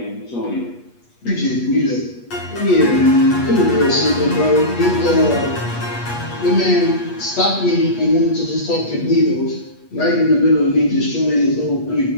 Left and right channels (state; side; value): late; right; 8.3 ms